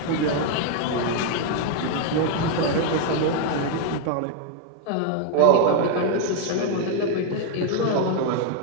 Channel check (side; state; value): both; different; correlation 0.00